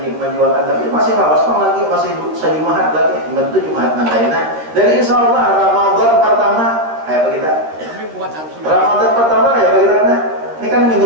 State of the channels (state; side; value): late; left; 13 ms